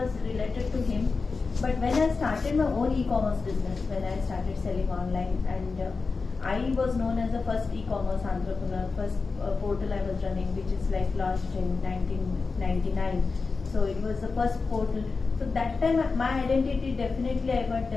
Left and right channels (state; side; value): quieter; right; 4.3 dB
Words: related to him. But when I started my own e-commerce business, when I started selling online, and I was known as the first e-commerce entrepreneur, first portal I was running, which is like launched in 1999. So it was the first portal. So that time my identity definitely I got